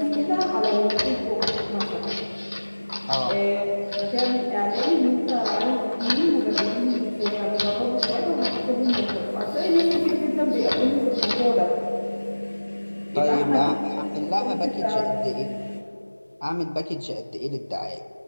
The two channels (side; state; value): both; inverted; correlation -1.00